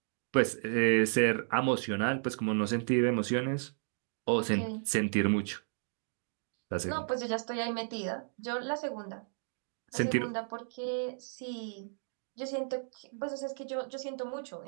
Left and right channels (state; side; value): silent; left; digital silence